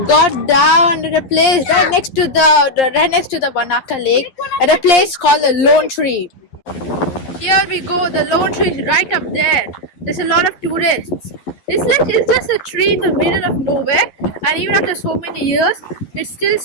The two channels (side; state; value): right; late; 11 ms